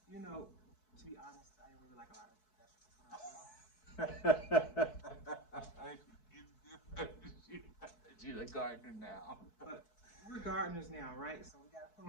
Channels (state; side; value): late; right; 4.6 ms